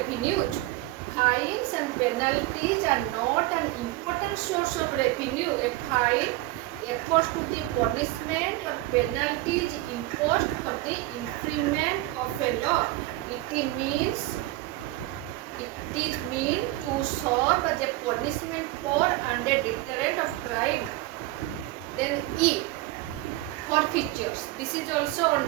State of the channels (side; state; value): left; quieter; 18.0 dB